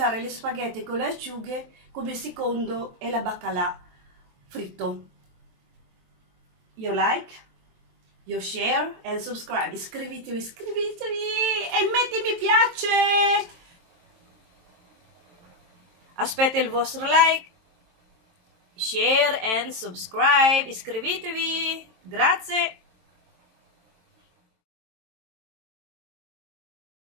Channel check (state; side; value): late; left; 23 ms